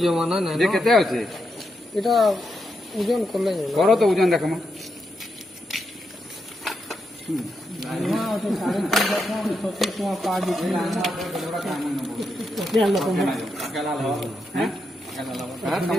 जमाना नहीं जे केते होचे এটা ওজন করলে करो तो वजन देखम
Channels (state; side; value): normal; both; correlation 0.83